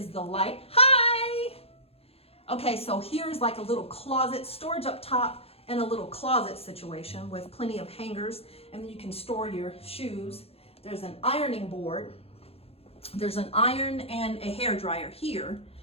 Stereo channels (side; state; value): right; late; 0.29 ms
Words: the light. Hi! Okay, so here's like a little closet, storage up top, and a little closet situation with plenty of hangers, and then you can store your shoes. There's an ironing board. There's an iron and a hair dryer here,